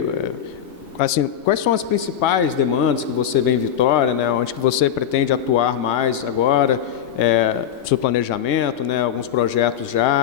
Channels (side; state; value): right; quieter; 9.4 dB